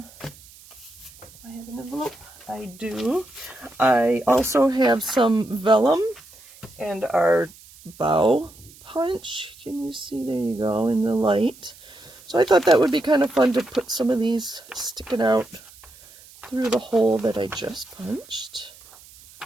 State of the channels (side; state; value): right; noise; hiss, 23 dB below the sound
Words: have an envelope. I do. I also have some vellum and our bow punch. Can you see? There you go in the light. So I thought that would be kind of fun to put some of these sticking out through the hole that I just punched.